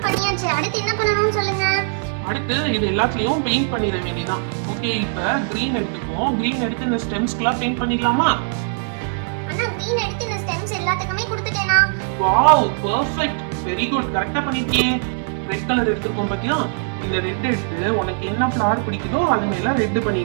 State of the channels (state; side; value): silent; left; digital silence